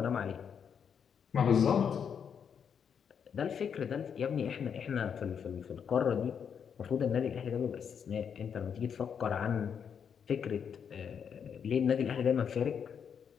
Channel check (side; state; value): right; quieter; 7.4 dB